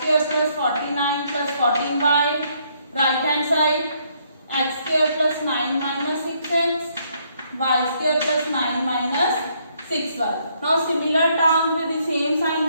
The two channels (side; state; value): both; inverted; correlation -0.70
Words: plus 49 plus 14y, right hand side x square plus 9 minus 6x, y square plus 9 minus 6y. Now similar term with the same sign